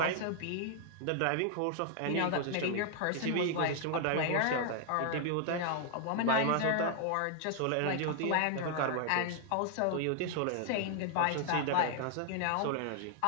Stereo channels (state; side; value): different; both; correlation 0.00